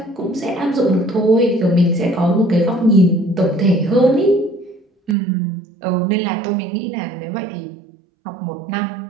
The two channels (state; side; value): drops out; left; at 5.2 s